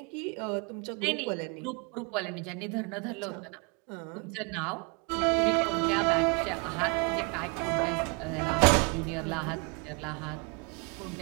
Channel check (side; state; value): left; quieter; 33.0 dB